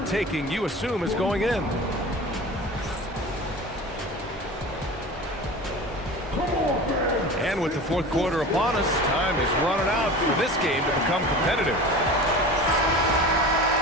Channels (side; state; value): both; normal; correlation 0.35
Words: you assume, is going in. And with the fourth quarter upon us, time is running out for this game to become competitive.